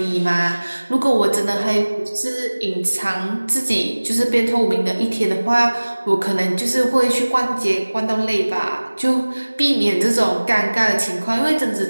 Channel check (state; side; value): inverted; both; correlation -1.00